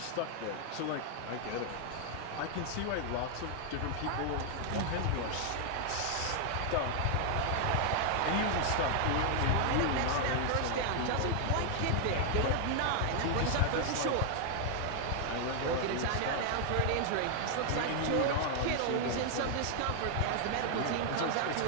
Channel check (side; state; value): both; different; correlation 0.00